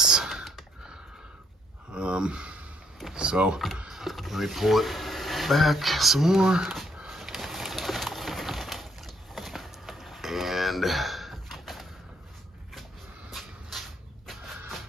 So let me pull it back some more. And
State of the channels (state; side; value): normal; both; correlation 0.70